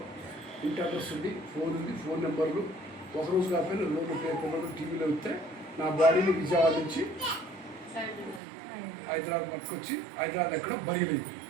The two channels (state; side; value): drops out; left; at 8.4 s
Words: ఇంటి అడ్రస్ ఉంది, ఫోన్ ఉంది, ఫోన్ నెంబర్లు, ఒకరోజు కాకపోయినా లోపల పేపర్లు టీవీలో వస్తే నా బాడీని విజయవాడ నుంచి హైదరాబాద్ పట్టుకొచ్చి హైదరాబాద్ ఎక్కడో బయలుదేరింది.